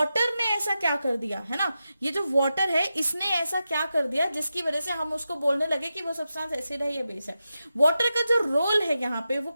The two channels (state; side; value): inverted; both; correlation -0.90